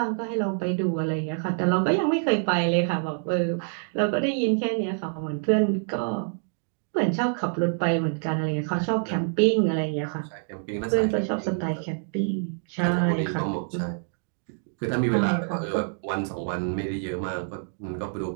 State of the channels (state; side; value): silent; left; 61 dB below the other